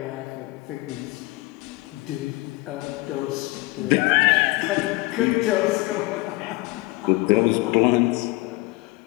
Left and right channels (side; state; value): right; quieter; 22.0 dB